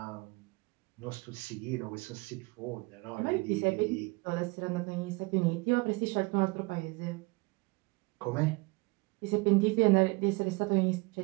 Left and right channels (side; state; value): left; quieter; 25.7 dB